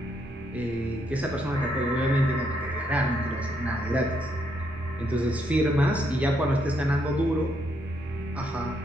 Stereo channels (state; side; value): normal; both; correlation 0.75